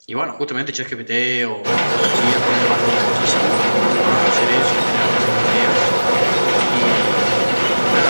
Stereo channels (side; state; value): both; inverted; correlation -1.00